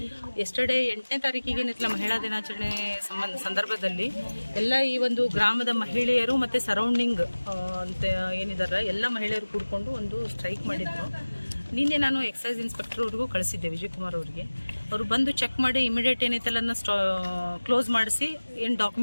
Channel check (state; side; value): inverted; both; correlation -1.00